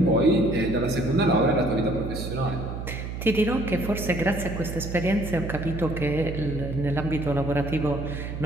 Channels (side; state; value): right; noise; hum, 6 dB below the sound